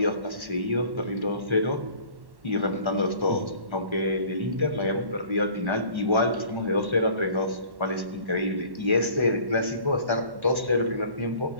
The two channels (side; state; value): left; late; 1.1 ms